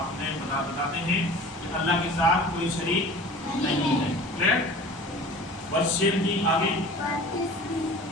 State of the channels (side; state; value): both; normal; correlation 0.41